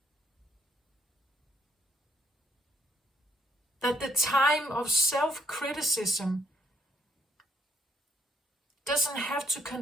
That the time of self-criticism doesn't have to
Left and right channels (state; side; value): normal; both; correlation 0.69